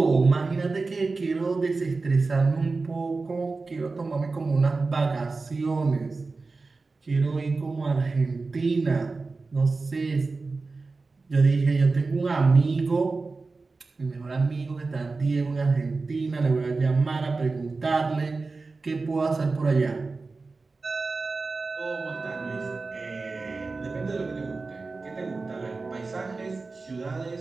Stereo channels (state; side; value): quieter; left; 3.9 dB